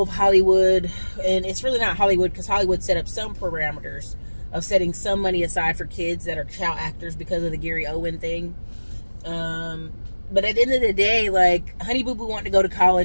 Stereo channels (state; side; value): inverted; both; correlation -1.00